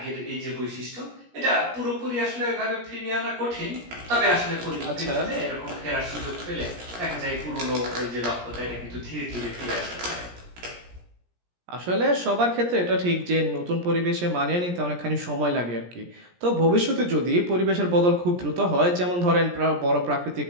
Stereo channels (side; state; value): left; late; 17 ms